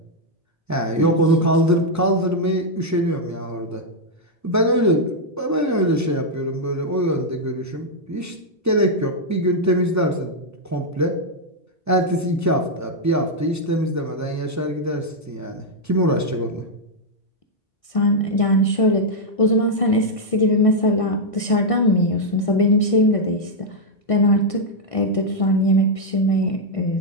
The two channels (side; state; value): both; normal; correlation -0.03